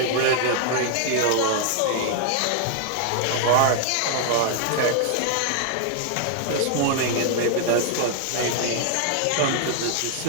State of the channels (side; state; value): both; different; correlation 0.00